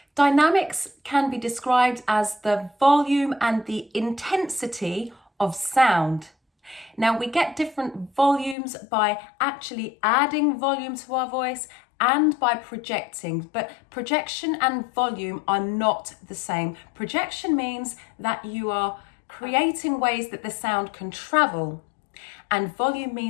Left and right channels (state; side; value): drops out; right; at 8.6 s